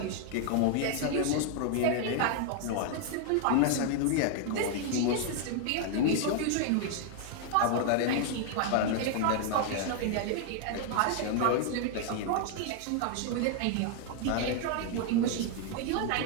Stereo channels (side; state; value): both; different; correlation 0.00